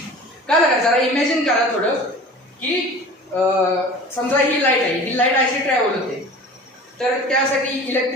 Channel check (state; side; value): normal; both; correlation 0.40